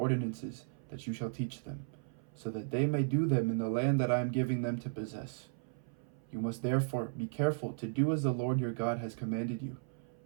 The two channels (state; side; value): silent; left; 54 dB below the other